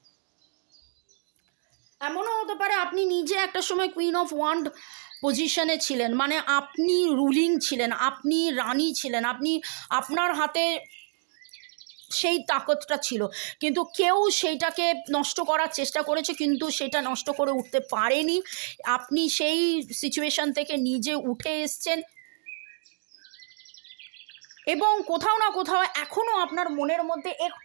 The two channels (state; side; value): silent; left; digital silence